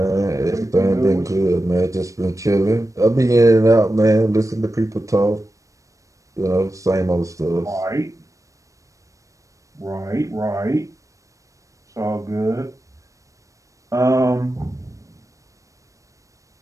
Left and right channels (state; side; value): late; left; 0.16 ms